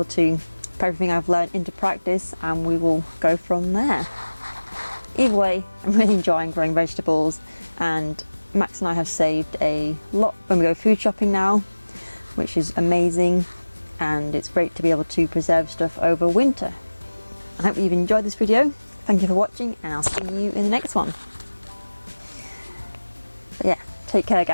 to put everything I've learned into practice and we will go from there. Either way, I'm really enjoying growing vegetables, and Max and I have saved a lot when we go food shopping now, which is amazing. And it's great to be able to preserve stuff over winter. I hope you've enjoyed this video. Thank you for watching, and I'll see you in the next one. But yeah, take care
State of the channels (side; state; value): both; inverted; correlation -1.00